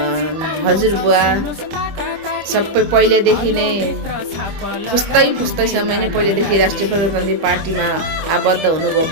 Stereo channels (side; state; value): left; late; 25 ms